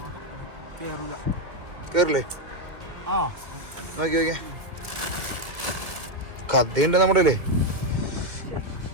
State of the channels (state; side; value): late; left; 2.6 ms